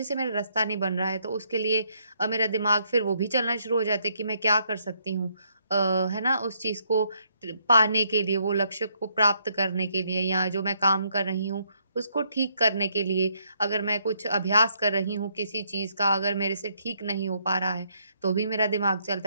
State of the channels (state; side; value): inverted; both; correlation -0.73